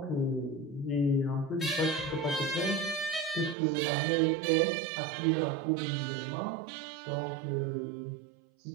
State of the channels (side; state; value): left; drops out; at 3.6 s